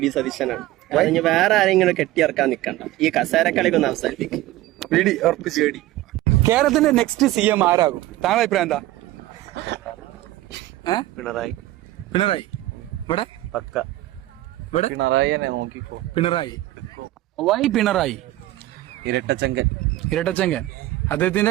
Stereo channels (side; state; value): left; quieter; 16.2 dB